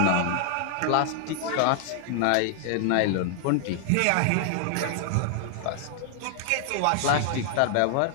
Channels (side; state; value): both; different; correlation 0.00